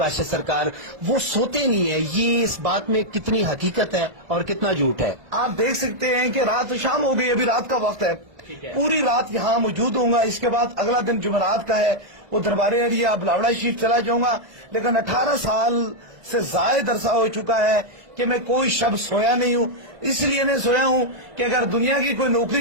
سرکار وہ سوتے نہیں ہیں، یہ اس بات میں کتنی حقیقت ہے اور کتنا جھوٹ ہے؟ آپ دیکھ سکتے ہیں کہ رات شام ہو گئی، ابھی رات کا وقت ہے، پوری رات یہاں موجود ہوں گا. اس کے بعد اگلا دن جمعرات کا ہے، وہ دربار ایریا بلاوڑا شریف چلا جاؤں گا. لیکن 18 سال سے زائد عرصہ ہو چکا ہے کہ میں کوئی شب سویا نہیں ہوں. اس لیے نہیں سویا ہوں کہ اگر دنیا کی کوئی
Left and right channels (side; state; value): left; late; 2.0 ms